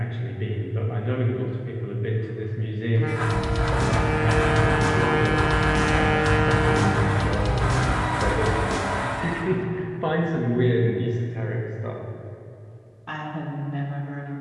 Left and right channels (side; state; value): both; identical; correlation 1.00